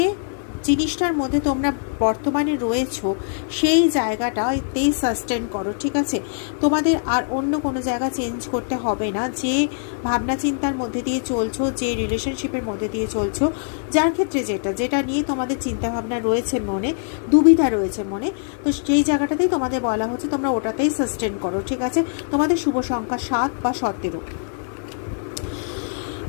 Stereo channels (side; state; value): right; silent; digital silence